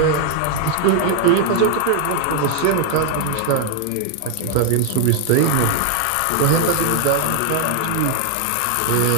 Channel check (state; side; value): different; both; correlation 0.00